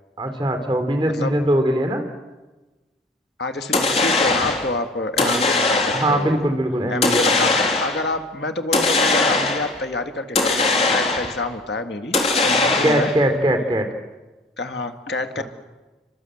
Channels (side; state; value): both; normal; correlation 0.46